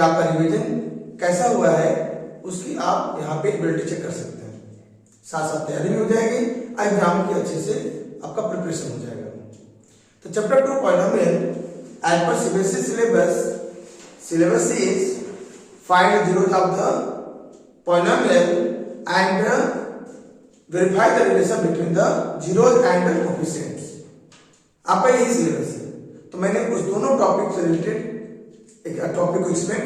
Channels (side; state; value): both; identical; correlation 1.00